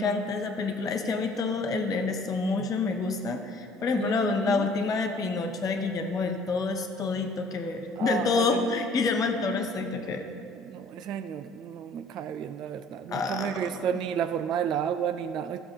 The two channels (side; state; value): both; normal; correlation 0.53